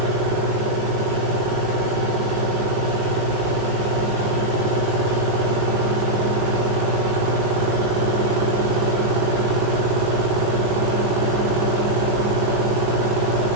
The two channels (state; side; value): late; left; 19 ms